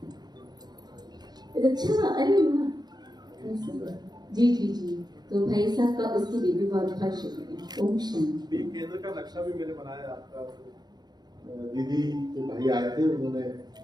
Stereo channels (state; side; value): late; left; 0.20 ms